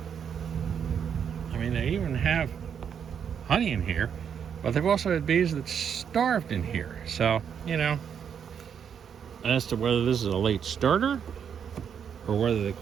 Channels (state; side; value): quieter; left; 7.8 dB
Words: I mean, they even have honey in here, but they've also had bees that starved in here. So, you know, as to whether this is a late starter or whether the